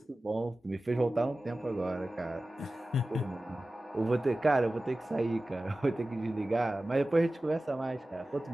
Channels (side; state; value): both; normal; correlation 0.96